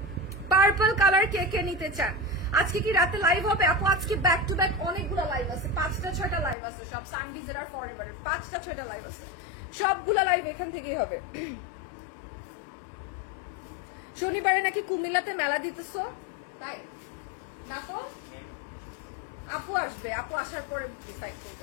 পার্পল কালার কে কে নিতে চান? আজকে কি রাতে লাইভ হবে আপু? আজকে ব্যাক টু ব্যাক অনেকগুলো লাইভ আছে, 5টা-6টা লাইভ আছে, সব সানভিজের আর ফরএভারের 5টা-6টা লাইভ আছে, সবগুলা লাইভ এখান থেকেই হবে। শনিবারে নাকি কুমিল্লাতে মেলা দিতেছো, তাই না? তো আপু আসবে, আপু আসার পরে ডিসাইড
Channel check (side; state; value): right; drops out; at 6.6 s